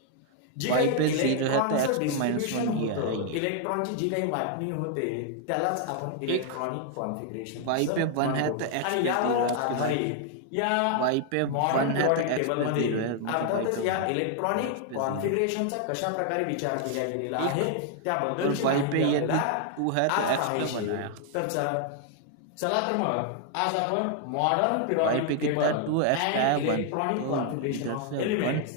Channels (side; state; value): both; different; correlation 0.00